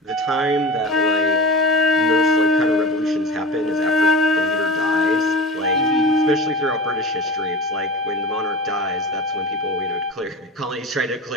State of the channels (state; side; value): normal; both; correlation 0.32